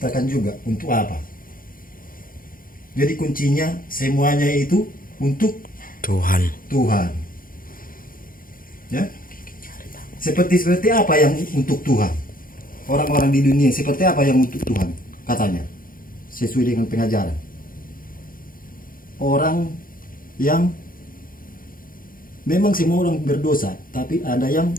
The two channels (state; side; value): late; right; 0.41 ms